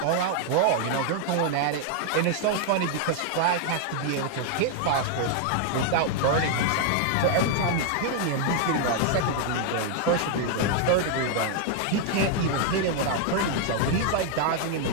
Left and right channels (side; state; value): both; different; correlation 0.00